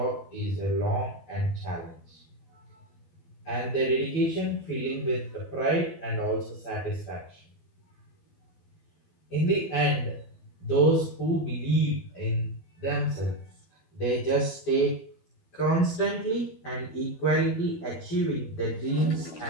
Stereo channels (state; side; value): late; right; 12 ms